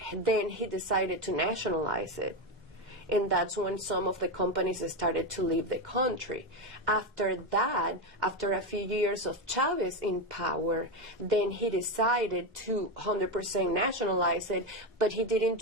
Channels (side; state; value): both; normal; correlation 0.12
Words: then he decided to nationalize it. And that's when some of the companies started to leave the country. After that, after a few years of Chavez in power, then he decided to 100% nationalize it, but he didn't